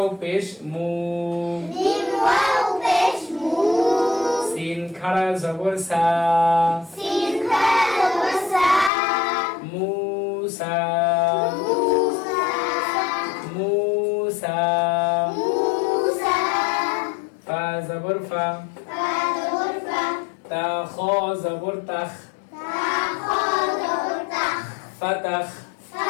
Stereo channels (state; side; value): drops out; right; at 8.9 s